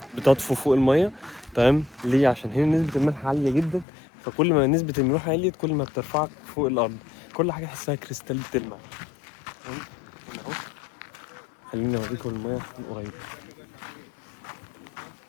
بتطفو فوق الميه. تمام ليه؟ عشان هنا نسبة الملح عالية جدا، فكل ما نسبة الملوحة عليت كل ما بترفعك فوق الأرض، كل حاجة تحسها كريستال بتلمع. تمام هنا اهو، خليني اوريكم الميه من قريب.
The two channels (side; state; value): right; drops out; at 3.9 s